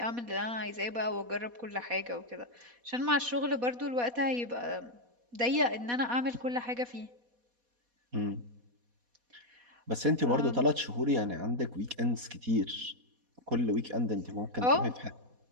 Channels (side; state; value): left; late; 4.2 ms